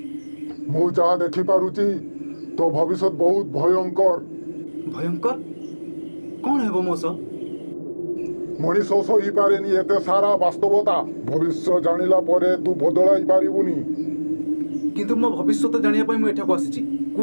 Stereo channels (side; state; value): both; inverted; correlation -1.00